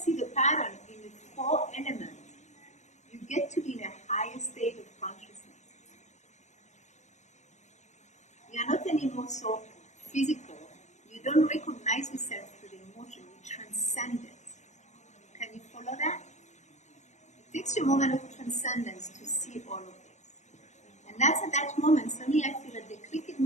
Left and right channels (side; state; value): right; late; 0.34 ms